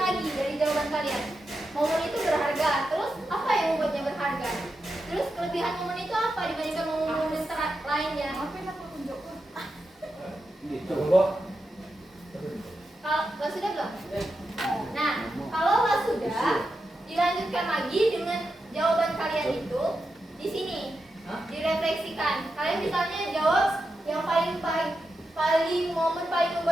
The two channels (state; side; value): normal; both; correlation 0.88